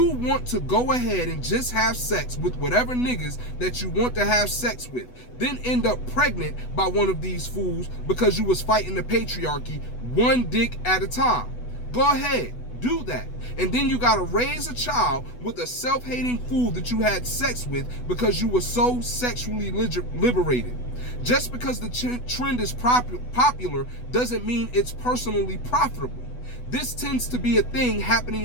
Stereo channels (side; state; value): right; late; 8.1 ms